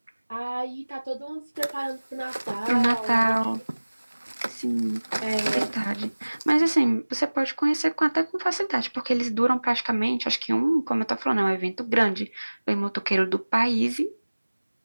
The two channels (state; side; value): inverted; both; correlation -1.00